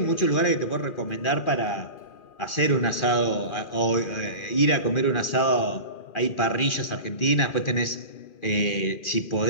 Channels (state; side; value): late; right; 2.4 ms